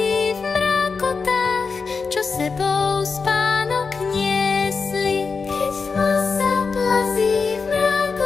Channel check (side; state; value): right; quieter; 4.9 dB